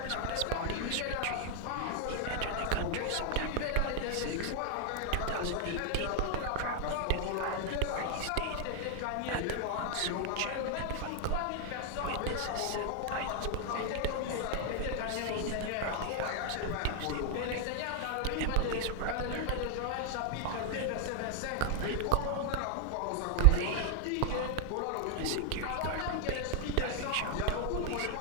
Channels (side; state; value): both; different; correlation 0.00